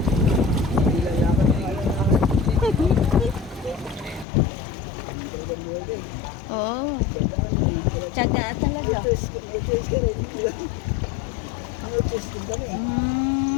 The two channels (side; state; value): right; drops out; at 4.2 s